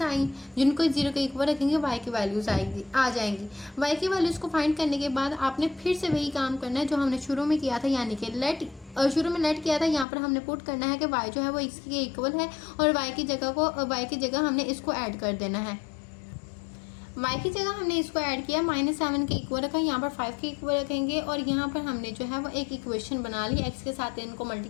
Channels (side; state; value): right; drops out; at 10.1 s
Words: आई जिनको 0 के इक्वल रखेंगे, y की वैल्यूज आ जाएंगी। y की वैल्यूज को फाइंड करने के बाद आपने फिर से वही काम करना है जो हमने शुरू में किया था, यानी कि शुरू में लेट किया था। यहाँ पर हमने पुट करना है कि y जो है वो x के इक्वल है और y की जगह हमने इसको ऐड कर देना है। y की जगह हमने इसको ऐड किया, -7 के इक्वल रखा, यहाँ पर 5 के इक्वल रखेंगे और यहाँ पर हमने जो है वो एक इक्वेशन बना ली। x के साथ इनको